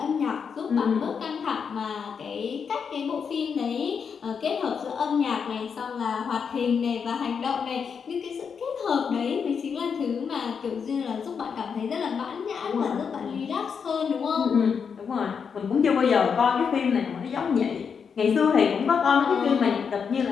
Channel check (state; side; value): quieter; right; 6.4 dB